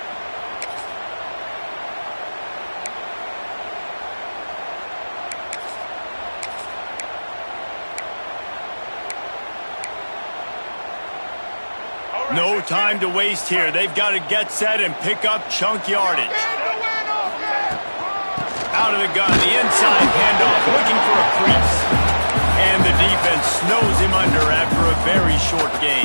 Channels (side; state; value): both; inverted; correlation -1.00